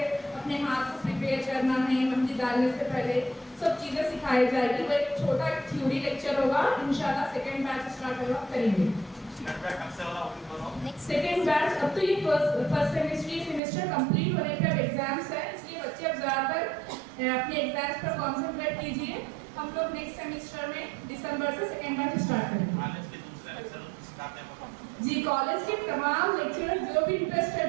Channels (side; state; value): left; drops out; at 13.6 s